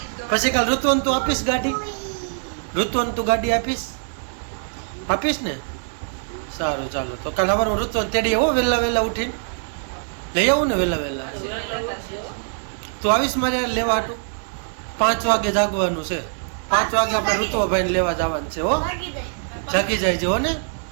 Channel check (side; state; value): left; silent; digital silence